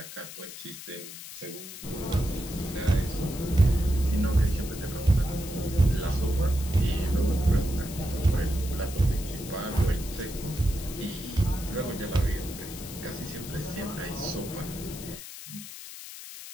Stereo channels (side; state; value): left; noise; hiss, 12 dB below the sound